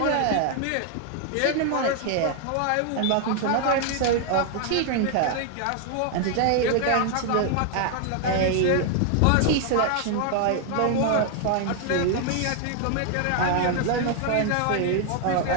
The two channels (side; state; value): both; different; correlation 0.00